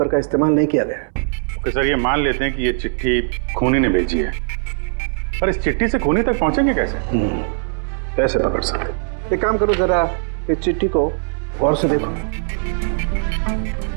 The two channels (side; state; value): left; silent; 61 dB below the other